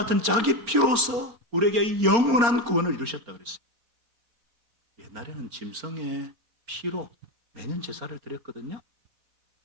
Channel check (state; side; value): late; left; 4.3 ms